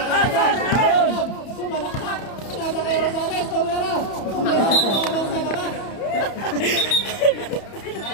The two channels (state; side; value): late; right; 31 ms